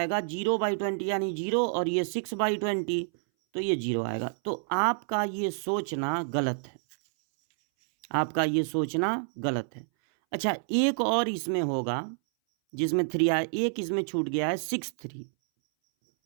0/20 यानी 0, और ये 6/20 तो ये 0 आएगा। तो आपका ये सोचना गलत है, आपका ये सोचना गलत है। अच्छा, एक और इसमें होगा जिसमें 3 आया, एक इसमें छूट गया है 6 3,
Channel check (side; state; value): left; silent; 59 dB below the other